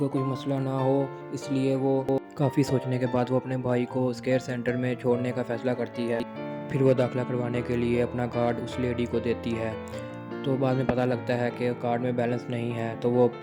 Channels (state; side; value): identical; both; correlation 1.00